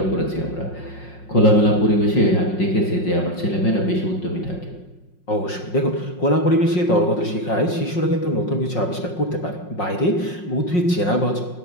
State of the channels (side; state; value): right; late; 5.5 ms